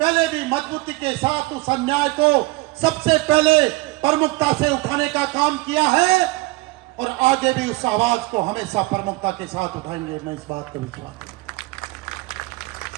भी मजबूती के साथ उस अन्याय को सबसे पहले प्रमुखता से उठाने का काम किया है और आगे भी उस आवाज को हमेशा प्रमुखता के साथ उठाएंगे। मैं इस बात को विश्वास करता हूं।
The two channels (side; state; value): left; quieter; 22.2 dB